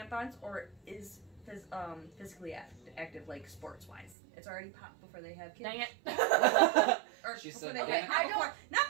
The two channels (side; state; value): left; drops out; at 4.2 s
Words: or is physically active, like sports-wise. It's already popped before they have kids. Dang it. Or She before said they okay. have, not